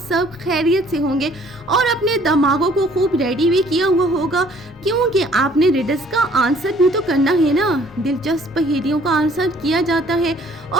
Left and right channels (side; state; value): both; normal; correlation 0.58